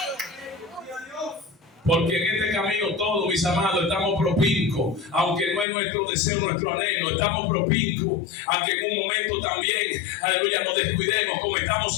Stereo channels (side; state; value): right; drops out; at 5.7 s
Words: Porque en este camino todos, mis amados, estamos propincos, aunque no es nuestro deseo, nuestro anhelo, estamos propincos a que en un momento también, aleluya, nos descuidemos,